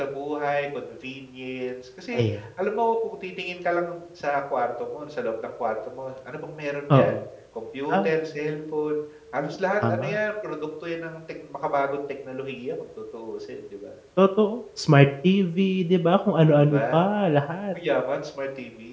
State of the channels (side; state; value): both; identical; correlation 1.00